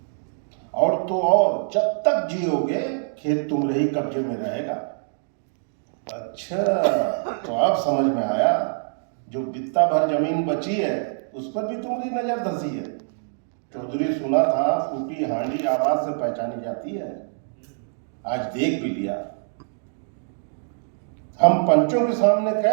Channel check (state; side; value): silent; left; digital silence